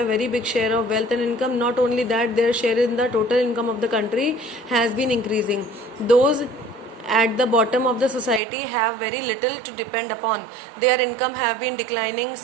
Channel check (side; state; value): left; drops out; at 8.4 s